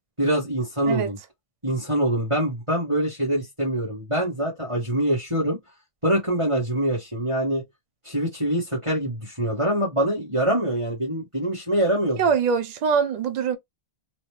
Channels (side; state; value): left; late; 1.6 ms